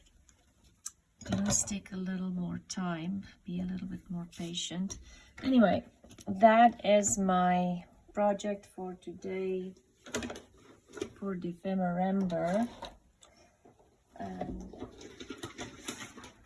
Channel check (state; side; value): identical; both; correlation 1.00